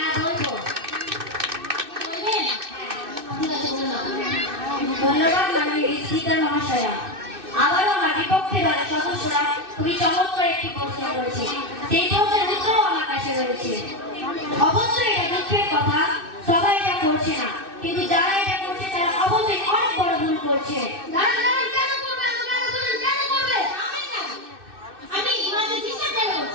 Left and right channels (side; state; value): left; late; 2.6 ms